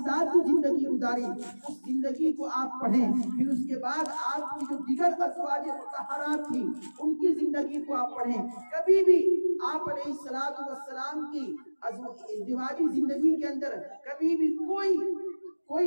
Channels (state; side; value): inverted; both; correlation -1.00